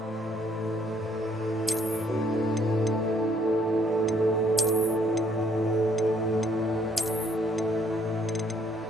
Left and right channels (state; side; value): normal; both; correlation 0.66